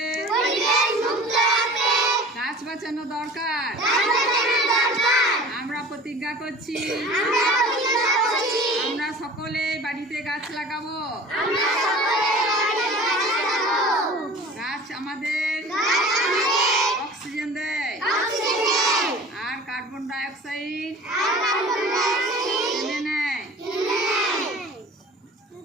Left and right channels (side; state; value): both; normal; correlation 0.41